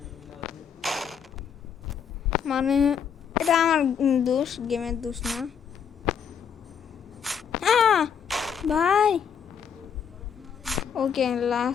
মানে এটা আমার দোষ, গেমের দোষ না ভাই। ওকে,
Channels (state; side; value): quieter; right; 7.4 dB